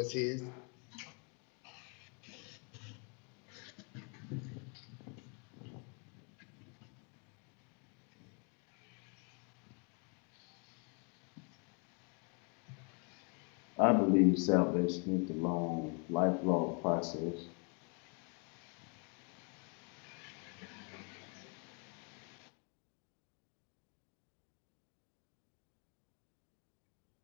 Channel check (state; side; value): quieter; right; 36.8 dB